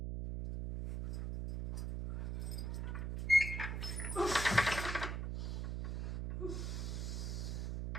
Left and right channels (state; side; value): noise; right; hum, 2 dB below the sound